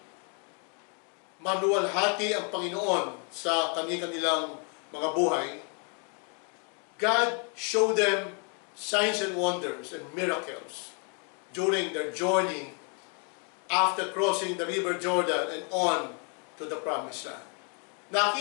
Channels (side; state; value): right; quieter; 38.4 dB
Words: maluwalhati ang Panginoon sa kanilang mga buhay. God showed them signs and wonders and miracles during their journey after crossing the River Jordan and on to the Promised Land.